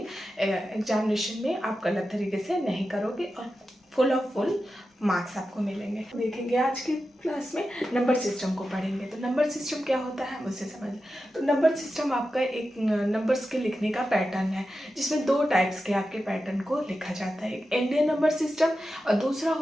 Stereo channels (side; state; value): both; normal; correlation 0.91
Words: एग्जामिनेशन में आप गलत तरीके से नहीं करोगे और फुल मार्क्स आपको मिलेंगे। देखेंगे आज की क्लास में नंबर सिस्टम को पढ़ेंगे। तो नंबर सिस्टम क्या होता है मुझसे समझ। तो नंबर सिस्टम आपका एक नंबर्स के लिखने का पैटर्न है, जिसमें 2 टाइप्स के आपके पैटर्न को लिखा जाता है। एक इंडियन नंबर सिस्टम और दूसरा